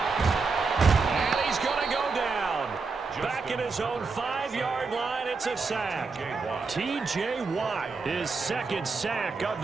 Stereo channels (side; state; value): left; quieter; 4.5 dB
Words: And he's going to go down. Back in his own 5-yard line, it's a sack. T.J. Watt, his 2nd sack of